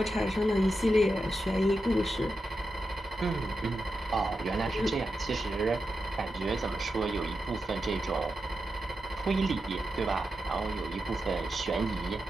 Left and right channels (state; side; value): normal; both; correlation 0.89